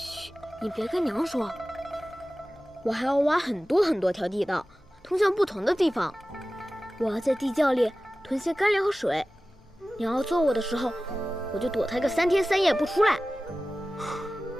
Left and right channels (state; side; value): normal; both; correlation 0.96